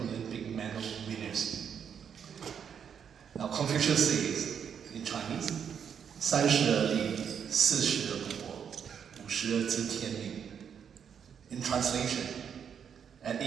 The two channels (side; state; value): left; quieter; 7.7 dB